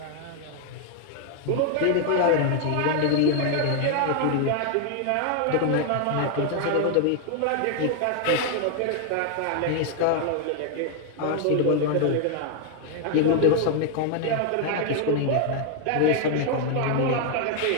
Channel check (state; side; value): different; both; correlation 0.00